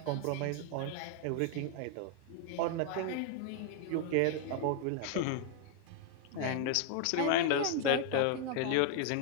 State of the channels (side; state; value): both; different; correlation 0.00